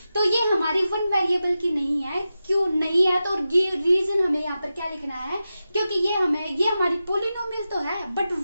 तो ये हमारी वन वेरिएबल की नहीं है। क्यों नहीं है, तो रीजन हमें यहाँ पर क्या लिखना है, क्योंकि ये हमारी पोलिनोमियल तो है बट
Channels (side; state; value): both; inverted; correlation -0.92